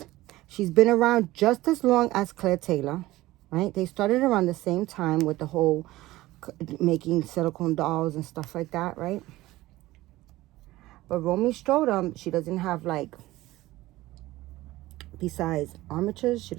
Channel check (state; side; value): quieter; left; 17.6 dB